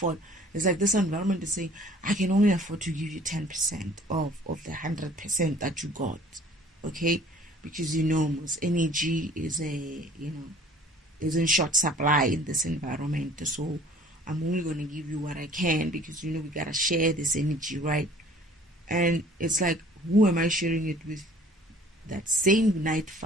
It's like this environment is saying, I can only afford to give you 10% of the 100% that you got. Okay? Because most energy is is in short supply in this environment. So I'm only going to give you what I can because we got to share this energy, right? And it's like, who am I sharing it with? That same night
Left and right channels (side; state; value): both; normal; correlation 0.52